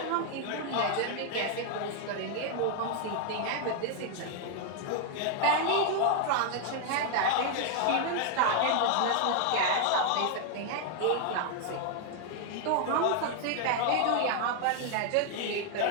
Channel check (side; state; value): both; different; correlation 0.00